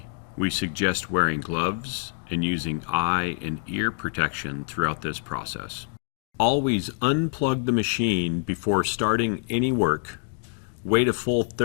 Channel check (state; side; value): silent; right; 61 dB below the other